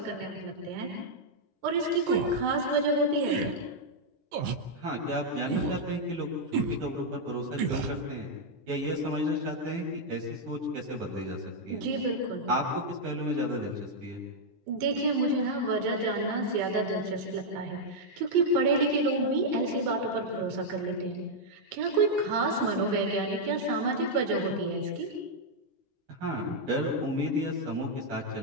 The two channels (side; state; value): left; late; 12 ms